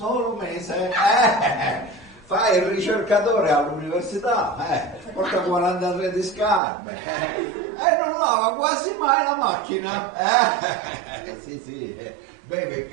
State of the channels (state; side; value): drops out; left; at 6.6 s